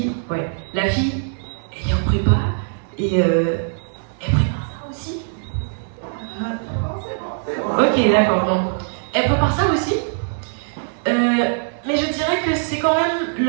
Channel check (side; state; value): left; silent; digital silence